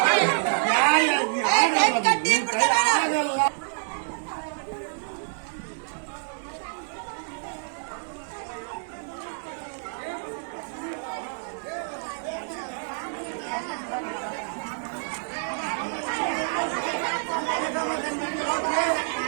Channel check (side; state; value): left; silent; 55 dB below the other